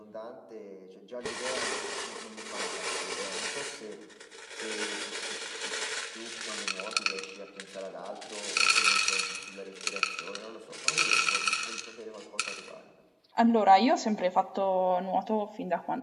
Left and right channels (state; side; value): identical; both; correlation 1.00